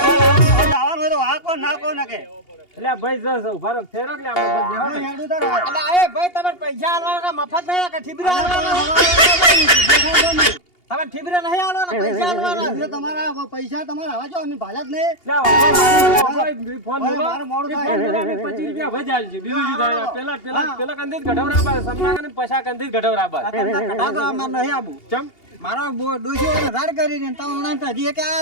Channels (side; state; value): right; late; 2.8 ms